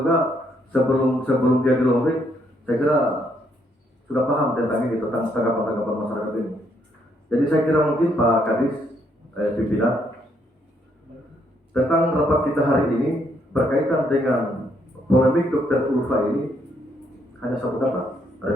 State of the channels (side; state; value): both; normal; correlation 0.72